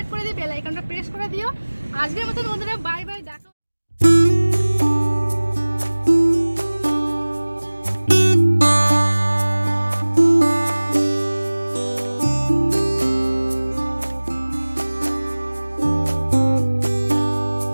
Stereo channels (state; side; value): inverted; both; correlation -1.00